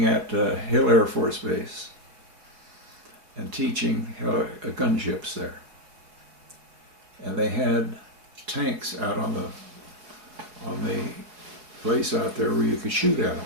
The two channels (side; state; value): left; late; 4.9 ms